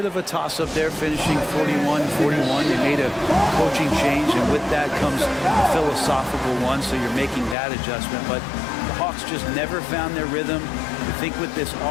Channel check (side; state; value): right; drops out; at 7.6 s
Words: of a toss-up there, finishing 41-41. They made a coaching change, and with that comes a philosophical one, so you're making that adjustment. But the Hawks just never found their rhythm. I think with this